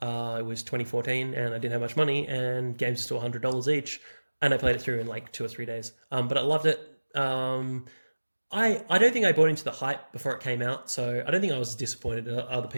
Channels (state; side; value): inverted; both; correlation -1.00